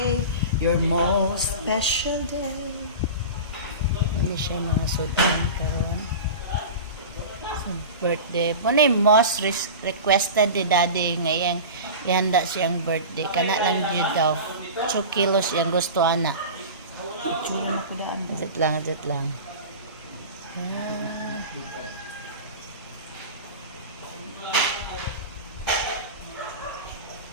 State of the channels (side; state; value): both; inverted; correlation -0.31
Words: your most special day. Hindi siya mga sudan karon. So, birthday. Muna yung most requested ni daddy ngayon. Ihanda siyang birthday. Kana lang yun daw. 2 kilos yung gusto ana. Adjut lang.